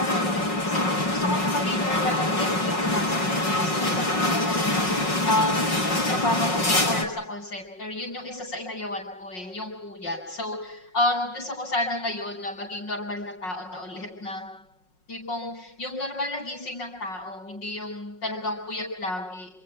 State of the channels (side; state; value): right; late; 5.5 ms